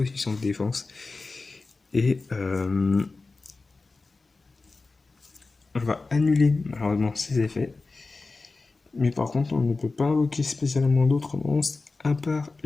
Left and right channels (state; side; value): quieter; right; 3.7 dB